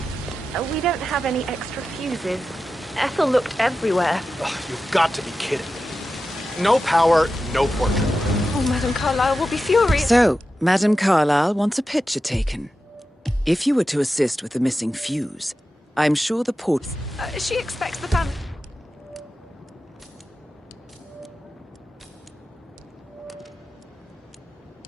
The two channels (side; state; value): both; normal; correlation 0.92